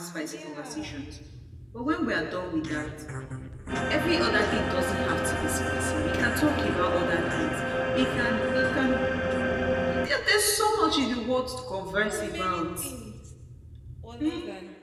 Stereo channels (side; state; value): both; identical; correlation 1.00